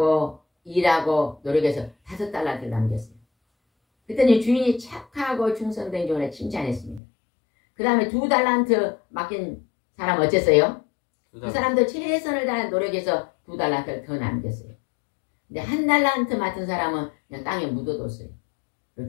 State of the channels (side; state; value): right; drops out; at 7.0 s